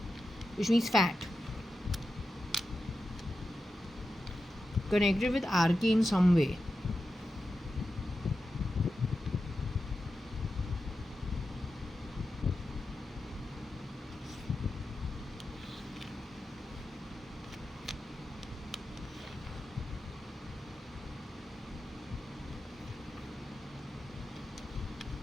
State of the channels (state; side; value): normal; both; correlation 0.90